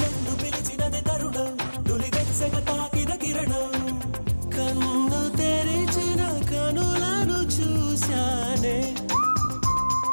నన్ను పిలిచినది తరుణం నులివెచ్చగ తాకిన కిరణం కన్ను తెరిచిన కనులను చూశానే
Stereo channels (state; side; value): inverted; both; correlation -1.00